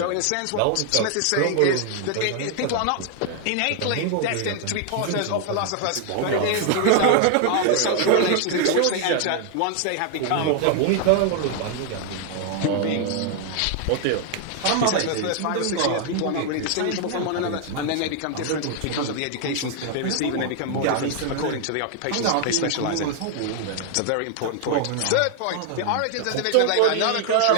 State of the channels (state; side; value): different; both; correlation 0.00